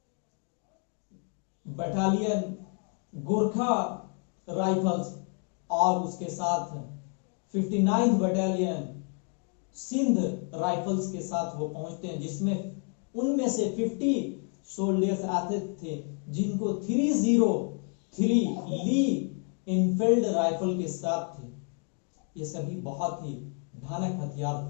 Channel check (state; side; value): quieter; right; 37.2 dB